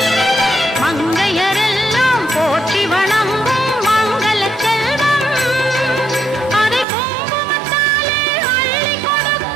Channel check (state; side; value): drops out; left; at 6.9 s